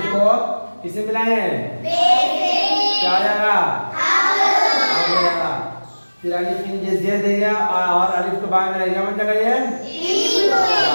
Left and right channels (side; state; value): both; inverted; correlation -1.00